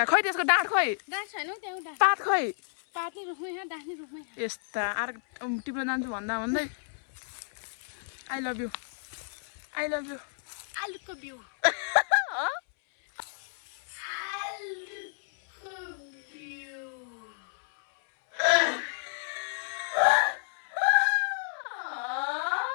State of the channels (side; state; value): right; silent; 57 dB below the other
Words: खै त्यसको डाँठ खै पात खै यस्ता आर टिप्न जान्छु भन्दा भन्दै आई लभ यु आलुको बिउ